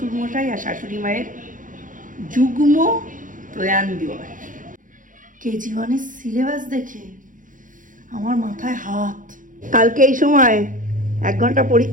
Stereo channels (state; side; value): late; left; 0.38 ms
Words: আর শাশুড়ি মায়ের যুগ্ম প্রয়াণ দিবস। কেজি ওয়ানের সিলেবাস দেখে আমার মাথায় হাত। কালকে এই সময় 1 ঘন্টা